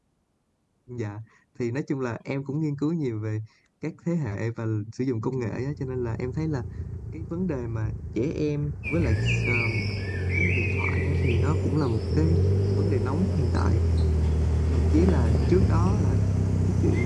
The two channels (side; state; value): both; identical; correlation 1.00